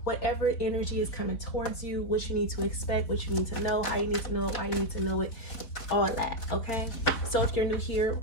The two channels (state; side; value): late; right; 4.0 ms